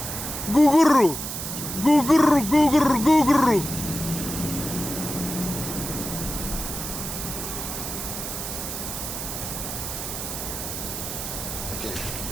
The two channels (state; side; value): noise; right; hiss, 6 dB below the sound